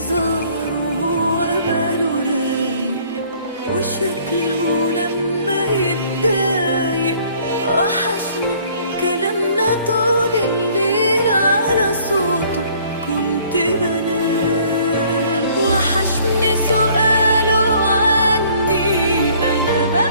وهو باله رايق، وشكله لما يتضايق. وحشني كلامنا طول الليل على صوته كنت بنام. وحشني سؤاله عني انا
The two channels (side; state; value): both; inverted; correlation -0.58